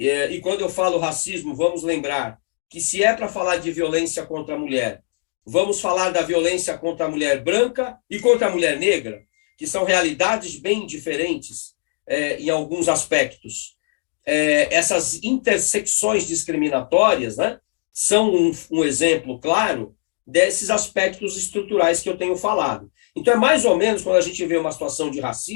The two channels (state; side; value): silent; right; 65 dB below the other